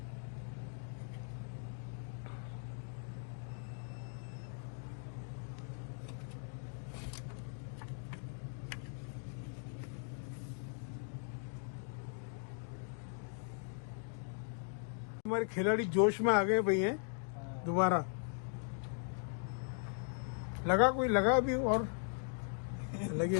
हमारे खिलाड़ी जोश में आ गए भैया, दोबारा लगा, कोई लगा भी और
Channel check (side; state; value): right; silent; 52 dB below the other